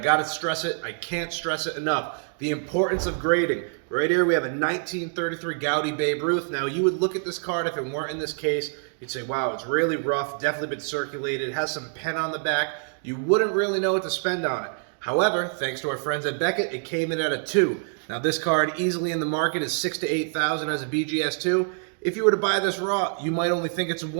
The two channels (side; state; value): left; silent; 55 dB below the other